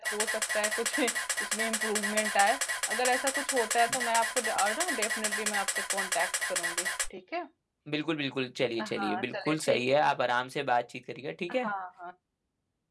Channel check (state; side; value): identical; both; correlation 1.00